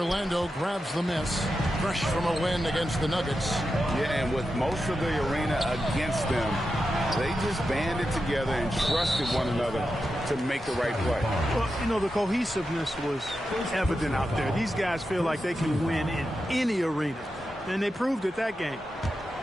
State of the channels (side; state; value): both; normal; correlation 0.89